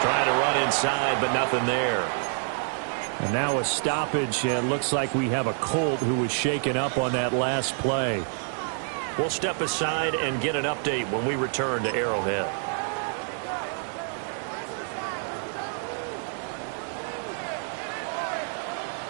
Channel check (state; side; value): silent; left; 57 dB below the other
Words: Trying to run inside, but nothing there. And now a stoppage, and looks like we have a Colt who was shaken up on that last play. We'll step aside and get an update when we return to Arrowhead.